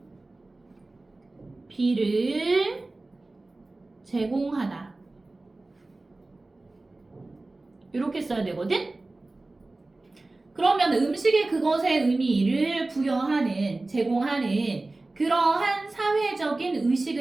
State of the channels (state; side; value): quieter; left; 3.1 dB